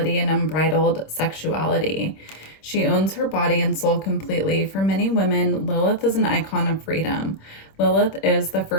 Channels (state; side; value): late; right; 26 ms